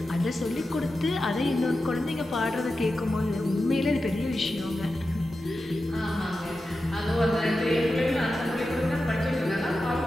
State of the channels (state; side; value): normal; both; correlation 0.92